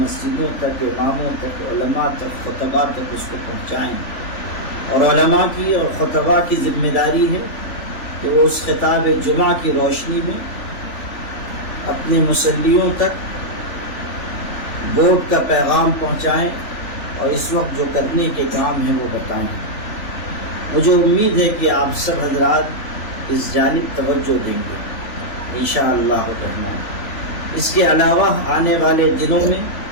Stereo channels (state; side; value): late; right; 3.4 ms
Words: تک، اماموں تک، علماء تک، خطباء تک اس کو پہنچائیں۔ اور علماء کی اور خطباء کی ذمہ داری ہے کہ وہ اس خطاب جمعہ کی روشنی میں اپنے مسلیوں تک ووٹ کا پیغام پہنچائیں اور اس وقت جو کرنے کے کام ہیں وہ بتائیں۔ مجھے امید ہے کہ آپ سب حضرات اس جانب توجہ دیں گے انشاءاللہ الرحمن۔ اس کے علاوہ آنے والے دنوں میں